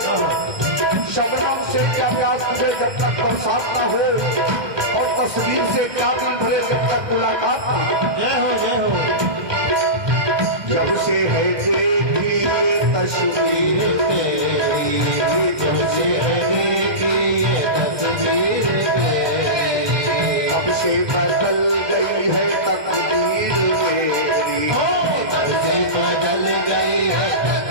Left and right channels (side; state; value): left; late; 1.2 ms